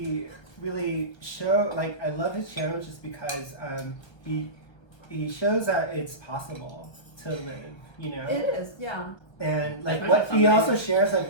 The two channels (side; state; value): right; late; 1.3 ms